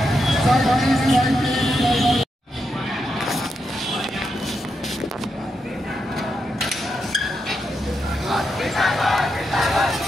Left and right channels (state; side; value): normal; both; correlation 0.84